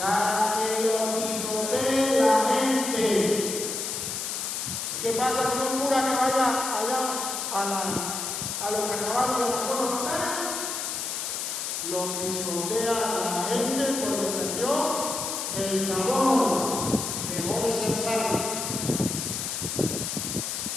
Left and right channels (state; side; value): noise; left; hiss, 3 dB below the sound